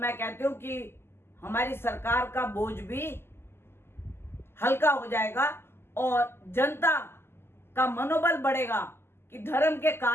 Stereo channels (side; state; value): right; late; 0.12 ms